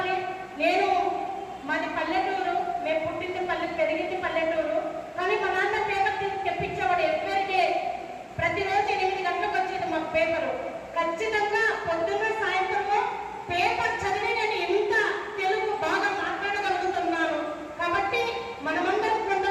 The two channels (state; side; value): identical; both; correlation 1.00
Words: నేను మాది పల్లెటూరు, మేము పుట్టింది పెరిగింది పల్లెటూరు. కానీ మా నాన్న పేపర్ తెప్పించేవాడు ఎవ్వరికే. ప్రతిరోజు 8 గంటలకు వచ్చేది మాకు పేపరు. ఖచ్చితంగా పొద్దున్న సాయంత్రము పేపర్ చదివి నేను ఇంత తెలుగు బాగా మాట్లాడగలుగుతున్నాను. కాబట్టి మనమందరం,